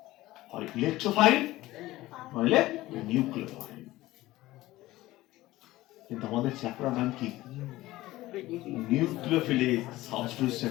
হয় ইলেকট্রোফাইল নইলে নিউক্লিওফাইল। কিন্তু আমাদের চ্যাপ্টার নাম কি, নিউক্লিওফিলিক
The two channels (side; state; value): right; quieter; 17.3 dB